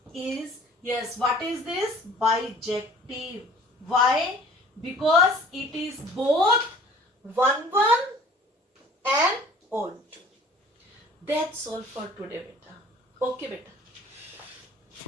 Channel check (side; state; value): both; normal; correlation 0.50